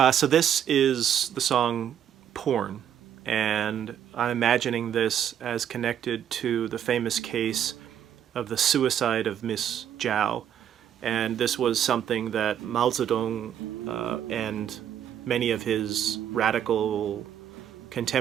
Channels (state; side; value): quieter; left; 9.7 dB